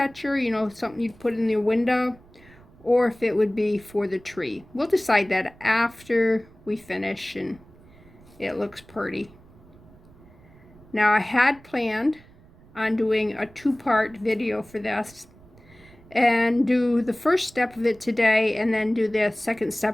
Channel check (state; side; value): noise; right; rumble, 25 dB below the sound